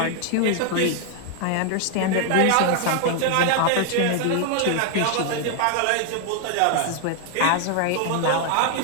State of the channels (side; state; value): both; different; correlation 0.00